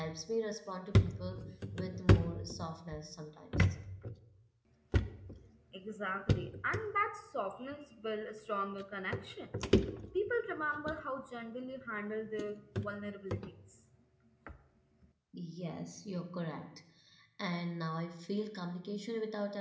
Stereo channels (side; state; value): both; identical; correlation 1.00